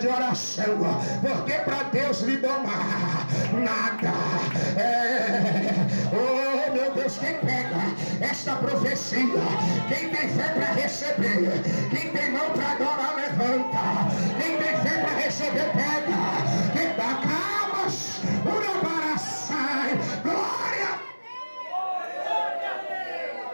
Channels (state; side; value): inverted; both; correlation -1.00